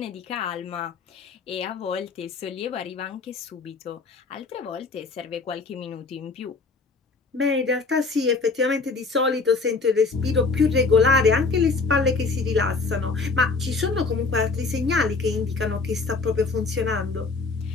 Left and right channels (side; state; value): right; quieter; 4.2 dB